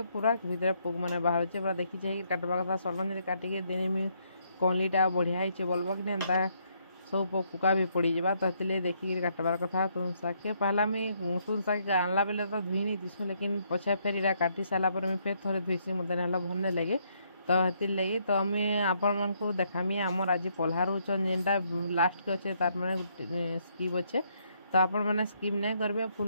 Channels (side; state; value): both; inverted; correlation -0.72